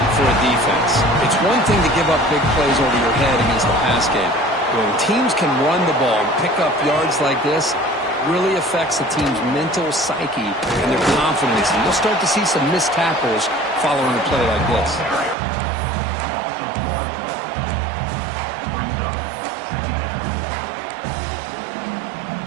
for a defense. It's one thing to give up big plays over your head against the pass game. When teams can run the ball and pick up yards like this, really affects the team's mental psyche and their confidence. And you'll start to see some missed tackles following a play like this.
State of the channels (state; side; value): drops out; left; at 15.4 s